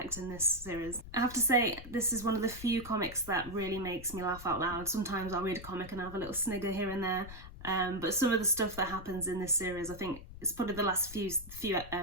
in this series. I have to say, this is one of the few comics that really makes me laugh out loud. Sometimes I'll read a comic and have a little snigger here and there, but some of the stuff that happens in this series, I think it's probably the last few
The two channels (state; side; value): noise; left; rumble, 14 dB below the sound